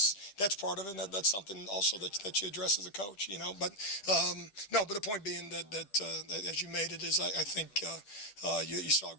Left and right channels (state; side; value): late; right; 10 ms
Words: part of it. And that's something also that you address as a coach. But the point being that as you made it is, I think you saw a